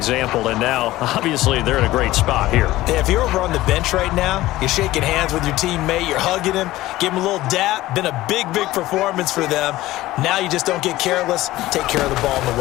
and now, obviously, they're in a great spot here. Yeah, if you're over on the bench right now, you're shaking hands with your teammate, you're hugging him, give him a little dap. Been a big performance for them. Now you just don't get careless. Take care of the ball on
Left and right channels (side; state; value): right; quieter; 16.8 dB